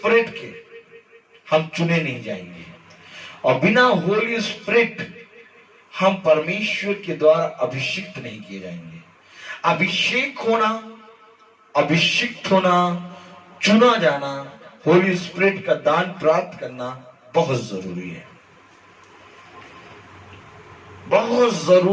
के हम चुने नहीं जाएंगे, और बिना होली स्पिरिट हम परमेश्वर के द्वारा अभिषिक्त नहीं किए जाएंगे। अभिषिक्त होना, चुना जाना, होली स्पिरिट का दान प्राप्त करना बहुत जरूरी है, बहुत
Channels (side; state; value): both; identical; correlation 1.00